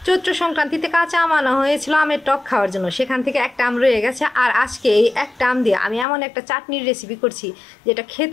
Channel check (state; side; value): drops out; right; at 6.1 s